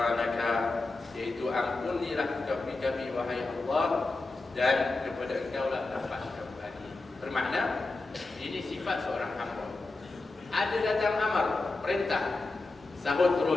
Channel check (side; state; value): right; quieter; 3.3 dB